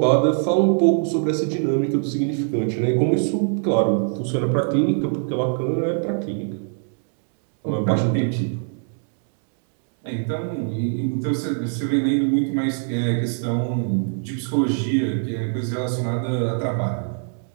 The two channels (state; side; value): silent; left; 60 dB below the other